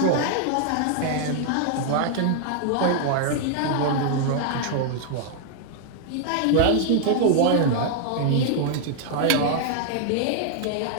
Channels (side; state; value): both; different; correlation 0.00